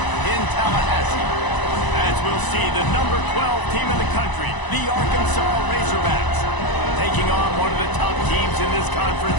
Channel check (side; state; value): right; late; 1.0 ms